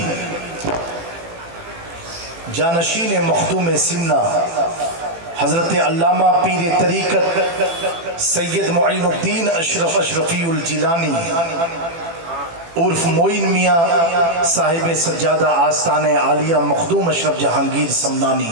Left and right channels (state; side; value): late; left; 18 ms